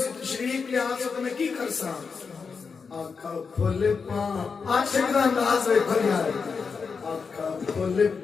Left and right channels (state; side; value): quieter; right; 5.3 dB